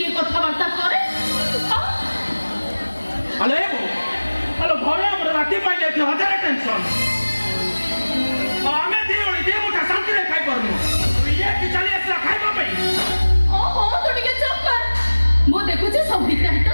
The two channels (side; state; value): both; inverted; correlation -1.00